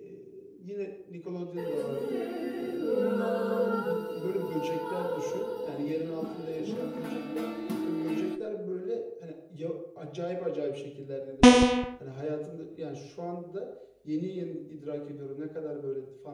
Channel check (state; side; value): identical; both; correlation 1.00